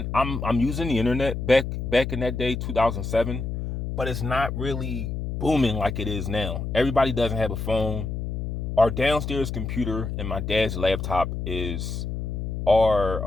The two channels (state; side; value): noise; left; hum, 4 dB below the sound